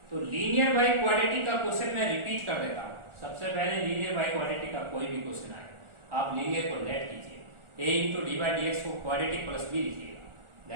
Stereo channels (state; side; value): late; left; 1.4 ms